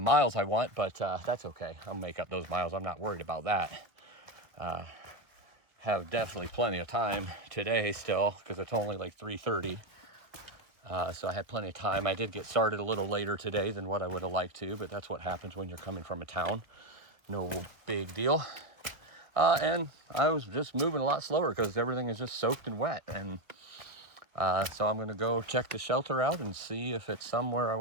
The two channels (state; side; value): late; left; 1.2 ms